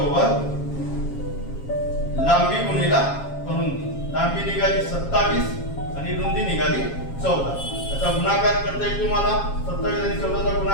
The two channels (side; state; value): right; late; 7.3 ms